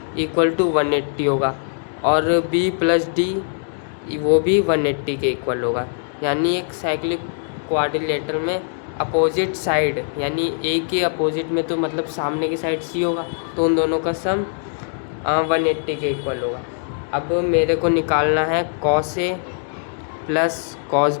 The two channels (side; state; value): right; silent; digital silence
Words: equal to 180 होगा और B प्लस डी वो भी 180 के इक्वल होगा। यानी एक साइक्लिक क्वाड्रिलेटरल में अपोजिट साइड यानी A के अपोजिट में तो मतलब सामने की साइड C होगा, तो उन दोनों का सम 180 के इक्वल होगा। अब मेरे को निकालना है cos A plus cos